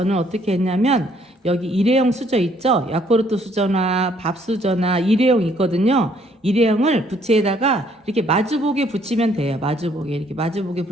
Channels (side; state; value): both; normal; correlation 0.65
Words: 어떻게 했냐면 여기 일회용 수저 있죠. 야쿠르트 수저나 밥 수저나 일회용 있거든요. 일회용을 부채에다가 이렇게 마주보게 붙이면 돼요. 마주보게 이렇게 마주보게